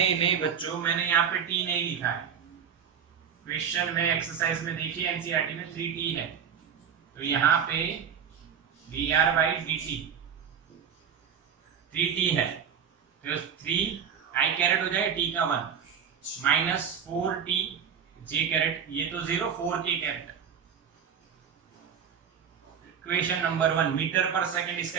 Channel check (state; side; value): quieter; left; 7.7 dB